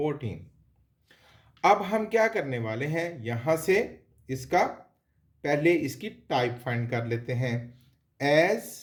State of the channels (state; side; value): identical; both; correlation 1.00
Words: अब हम क्या करने वाले हैं, यहां से इसका पहले इसकी टाइप फाइंड कर लेते हैं। एज